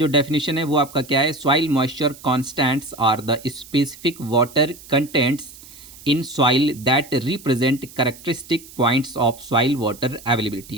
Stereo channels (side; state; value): right; noise; hiss, 19 dB below the sound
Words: डेफिनेशन है वो आपका क्या है, soil moisture constants are the specific water contents in soil that represent characteristic points of soil water